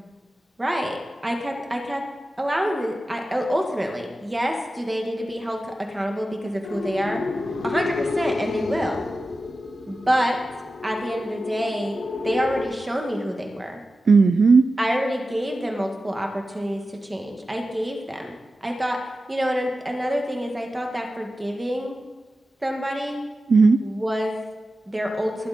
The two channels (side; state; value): both; normal; correlation 0.93